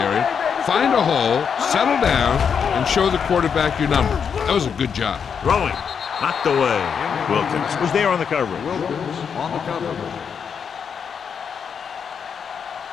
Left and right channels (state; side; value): quieter; right; 6.9 dB